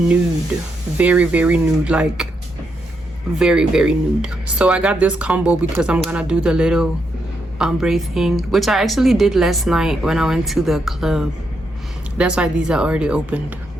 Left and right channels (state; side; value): normal; both; correlation 0.80